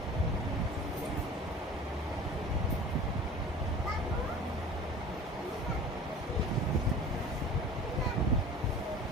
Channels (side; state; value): both; normal; correlation 0.40